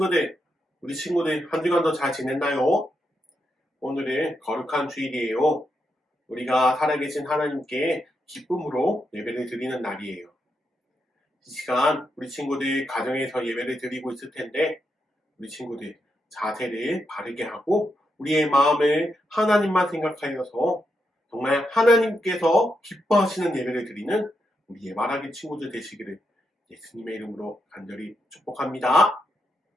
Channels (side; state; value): both; normal; correlation 0.83